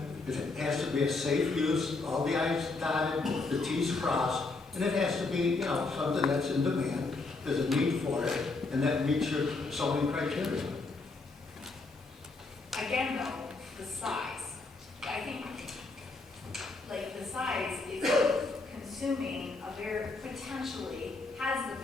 it has to be a safe use, all the I's dotted, the T's crossed, and it has to be, something that's in demand, there's a need for it, and that meets your zoning criteria. Again, though, the size. I think, the size is consuming potentially has the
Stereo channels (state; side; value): quieter; right; 3.7 dB